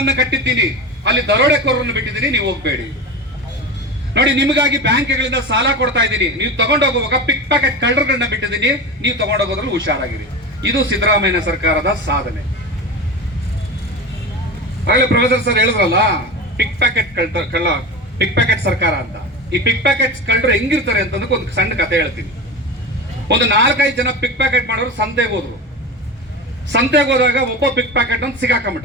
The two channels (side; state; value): both; normal; correlation 0.26